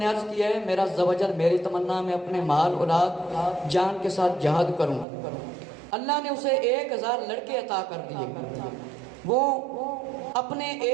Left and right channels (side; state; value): left; drops out; at 5.1 s